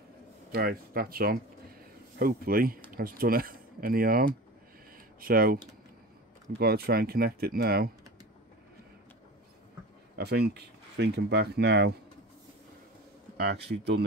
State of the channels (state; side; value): normal; both; correlation 0.33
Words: Right, that's on. Hopefully, that's done it. Any arm, so we've got to try and connect it now. I think, thinking back now, I actually done